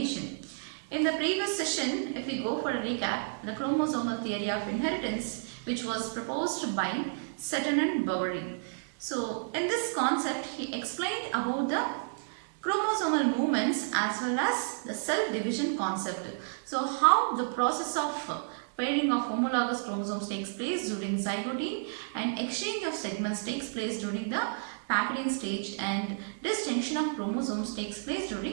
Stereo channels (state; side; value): silent; left; 57 dB below the other